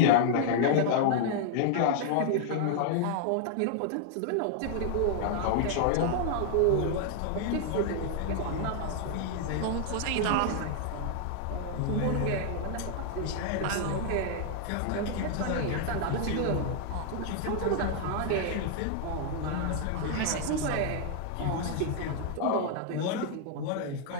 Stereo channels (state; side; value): different; both; correlation 0.00